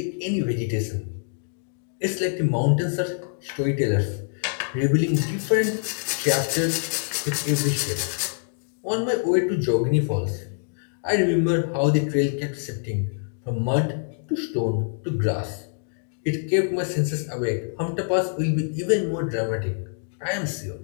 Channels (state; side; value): silent; right; digital silence